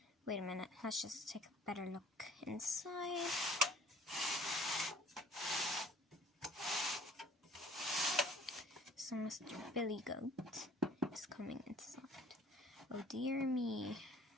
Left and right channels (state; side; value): normal; both; correlation 0.53